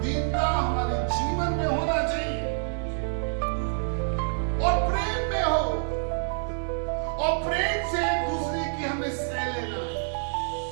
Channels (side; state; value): left; silent; 58 dB below the other